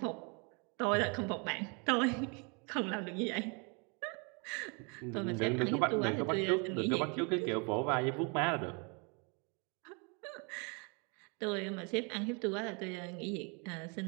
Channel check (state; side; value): quieter; left; 33.8 dB